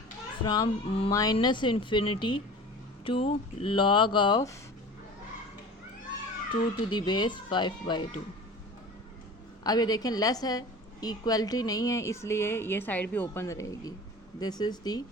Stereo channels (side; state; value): both; normal; correlation 0.39